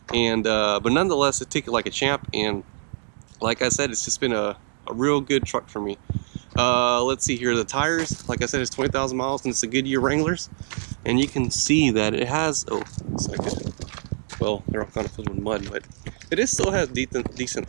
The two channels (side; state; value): left; silent; digital silence